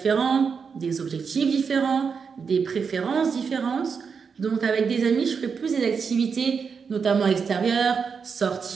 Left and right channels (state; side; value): quieter; left; 5.9 dB